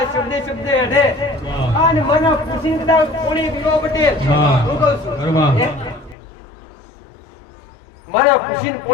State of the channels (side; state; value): right; drops out; at 6.2 s